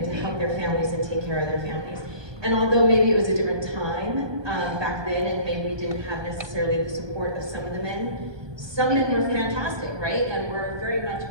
to help their families and take care of their families. And although maybe it was a different time back then, and maybe we didn't have necessarily the support of some of the men, some men were fantastic, right? And we're very much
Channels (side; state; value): left; late; 1.2 ms